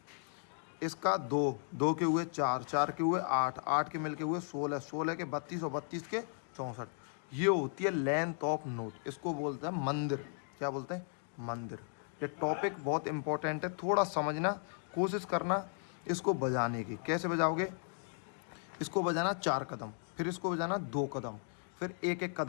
इसका 2 के हुए 4, 4 के हुए 8, 8 के मिल के हुए 16, 16 के 32 और 32 के 64। ये होती है लेंथ ऑफ नोट। इसको बोलते हैं मंदिर। क्या बोलते हैं? मंदिर। ये टॉपिक बहुत इंपॉर्टेंट है, थोड़ा समझना, कोशिश करना इसको बजाने की। कैसे बजाओगे? इसको बजाना 4 कदम, फिर इसको बजाना 2 कदम, फिर एक एक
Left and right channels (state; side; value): silent; right; 54 dB below the other